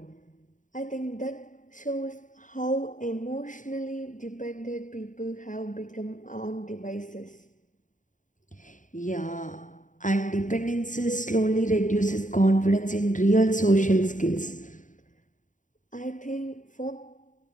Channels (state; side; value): late; right; 0.37 ms